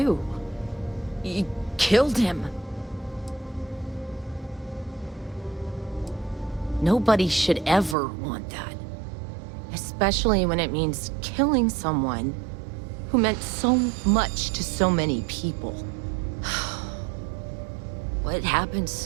killed him. Nobody should ever want that. Especially when it means killing someone who meant so much to so many people. What happens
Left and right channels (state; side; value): drops out; left; at 8.0 s